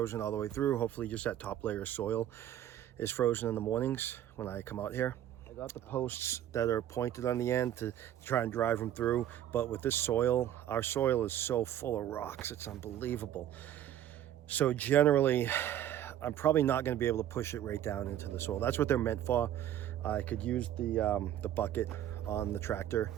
all the way through. Hopefully just that top layer of soil is frozen in the mornings when I come out here. I got the posts that are pointed on the end to try and drive them through, but with this soil, our soil is so full of rocks, it's unbelievable. So generally, I'm probably not going to be able to push it right down into the soil. That's what they're meant for. I could use the bucket on the tractor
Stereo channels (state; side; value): quieter; left; 11.5 dB